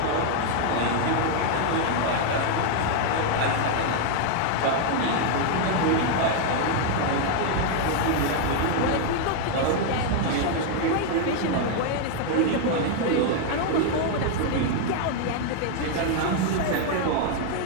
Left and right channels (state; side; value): different; both; correlation 0.00